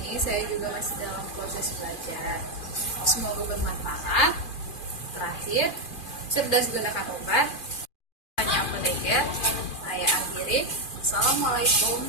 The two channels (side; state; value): right; late; 2.4 ms